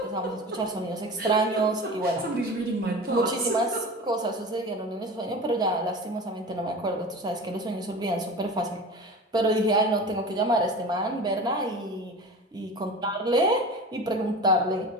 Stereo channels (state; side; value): normal; both; correlation 0.33